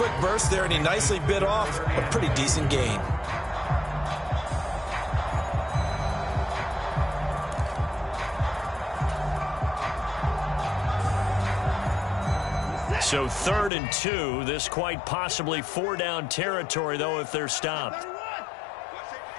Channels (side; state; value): right; drops out; at 13.7 s